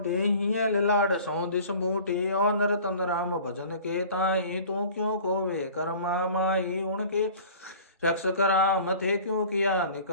हियल लाड सौ दिस बूटी, और नर तन राम भजन के ताई, तू क्यों खोवे कर्मा माई, उनके रक्षक राम थे क्यों किया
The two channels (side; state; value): both; inverted; correlation -0.45